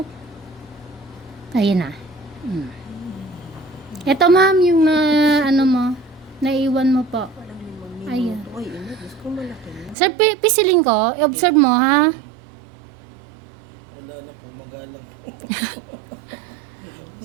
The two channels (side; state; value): left; drops out; at 10.0 s